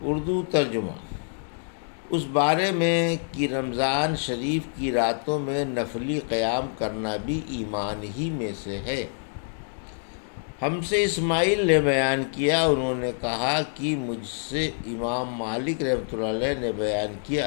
اردو ترجمہ۔ اس بارے میں کہ رمضان شریف کی راتوں میں نفلی قیام کرنا بھی ایمان ہی میں سے ہے۔ ہم سے اسماعیل نے بیان کیا، انہوں نے کہا کہ مجھ سے امام مالک رحمۃ اللہ علیہ نے بیان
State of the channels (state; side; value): silent; right; digital silence